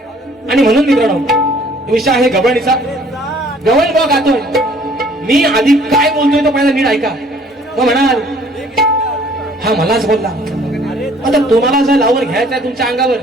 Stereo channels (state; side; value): normal; both; correlation 0.57